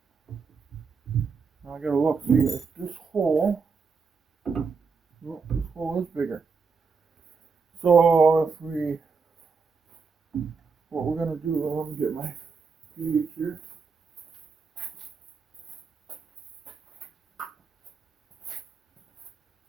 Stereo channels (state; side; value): quieter; left; 5.0 dB